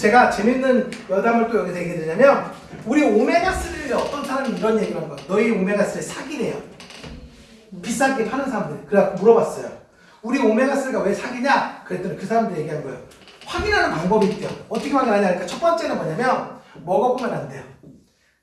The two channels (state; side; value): identical; both; correlation 1.00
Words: 재밌는 여담을 또 여기서 얘기해 드리냐면, 우리 오메가3를 어떤 사람이 이런 얘기를 한 거야. 너희 오메가3 사기래요. 비싸게 파는 사람들. 그래갖고 물어봤어요. 우리 오메가3가 왜 사기냐? 그랬더니 그 사람들이 얘기한 거예요. 확인하는 방법이 있대요. 어떻게 확인하냐? 그러니까 첫 번째는 뭐냐면 먹어보면 안 돼요.